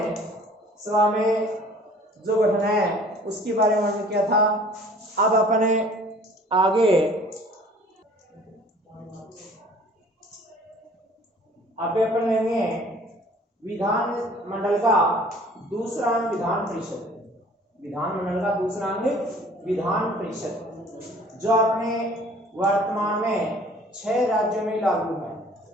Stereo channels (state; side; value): normal; both; correlation 0.51